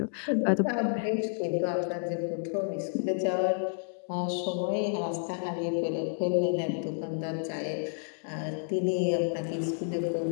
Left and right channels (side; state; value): right; silent; digital silence